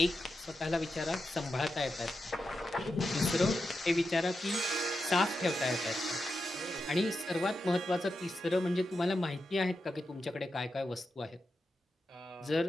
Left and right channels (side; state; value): both; normal; correlation 0.88